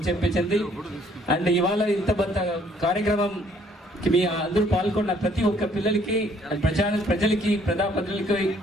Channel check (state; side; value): normal; both; correlation 0.62